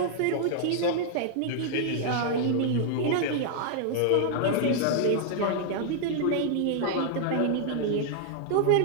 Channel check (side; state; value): both; different; correlation -0.01